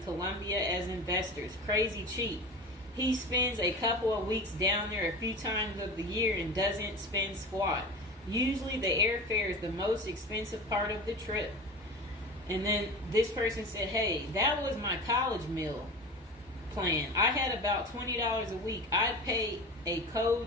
Colombia as investors. Crazy cheap. He spends a couple of weeks down there a few times of the year and doesn't spend squat. Usually the airfare is the most expensive part of the trip. And then this person said, hey, that was my college meal plan. I had about $20 a week. I'd pay a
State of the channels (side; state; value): both; normal; correlation 0.31